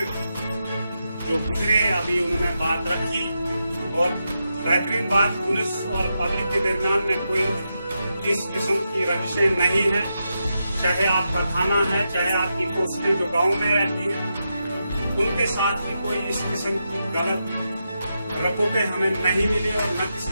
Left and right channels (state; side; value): inverted; both; correlation -0.86